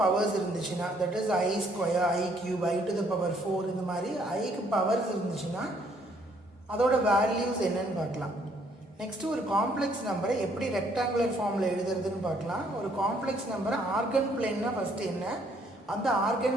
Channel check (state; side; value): normal; both; correlation 0.66